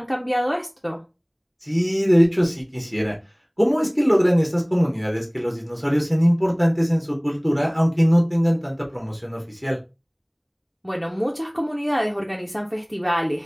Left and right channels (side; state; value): both; identical; correlation 1.00